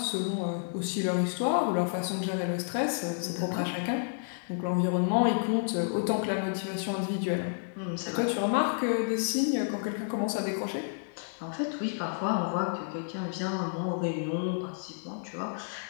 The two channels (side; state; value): right; silent; digital silence